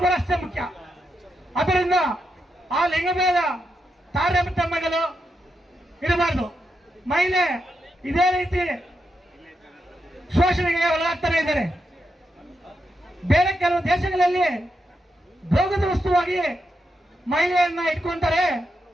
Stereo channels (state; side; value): normal; both; correlation 0.84